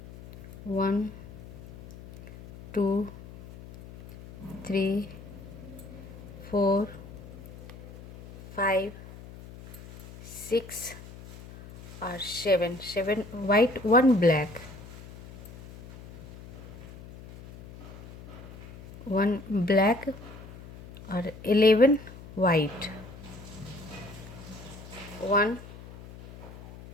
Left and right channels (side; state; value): left; noise; hum, 16 dB below the sound